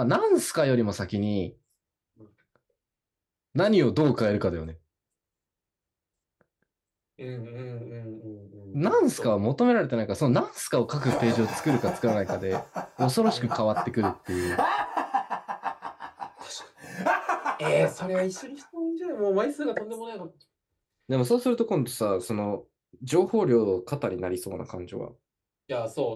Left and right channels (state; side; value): identical; both; correlation 1.00